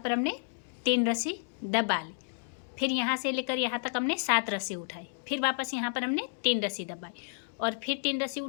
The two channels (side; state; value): right; silent; digital silence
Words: हमने 3 रस्सी दबा ली। फिर यहाँ से लेकर यहाँ तक हमने 7 रस्सी उठाई। फिर वापस यहाँ पर हमने 3 रस्सी दबाई और फिर 3 रस्सी